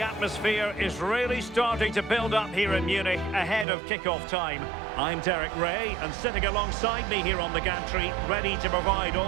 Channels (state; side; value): drops out; left; at 3.7 s